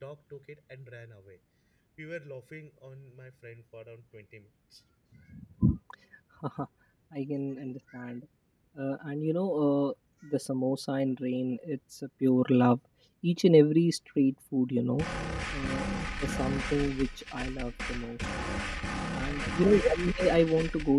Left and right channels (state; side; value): identical; both; correlation 1.00